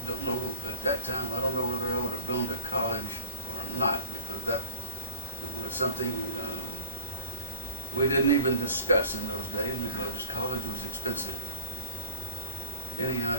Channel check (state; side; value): inverted; both; correlation -0.36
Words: don't know, at that time, I don't know whether I would have gone to college or not, because that was something we didn't even discuss in those days, because college was expensive. Anyhow,